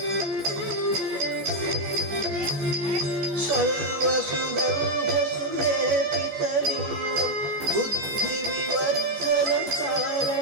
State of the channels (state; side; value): late; left; 14 ms